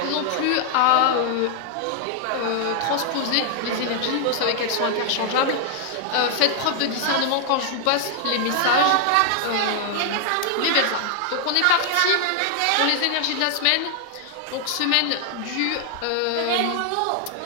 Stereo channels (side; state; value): both; different; correlation 0.00